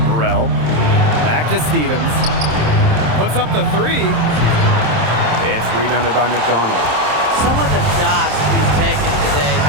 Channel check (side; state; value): left; late; 27 ms